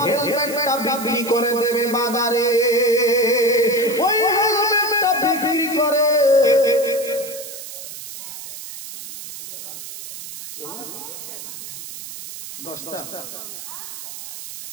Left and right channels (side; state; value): right; noise; hiss, 11 dB below the sound